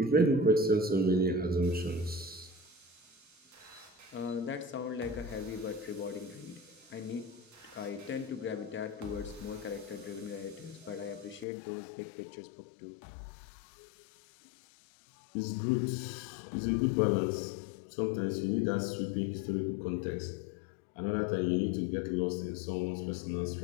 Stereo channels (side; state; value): right; drops out; at 11.5 s